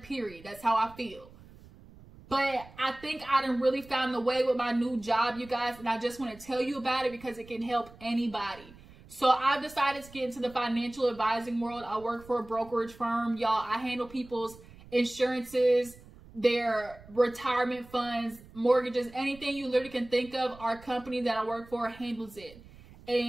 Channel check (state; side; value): noise; right; rumble, 21 dB below the sound